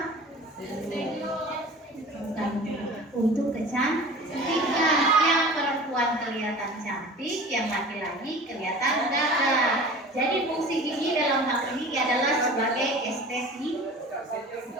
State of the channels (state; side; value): normal; both; correlation 0.40